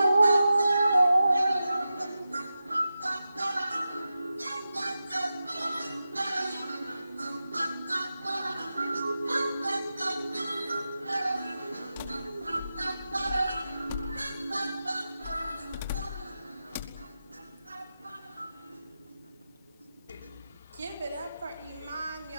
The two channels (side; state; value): both; inverted; correlation -0.92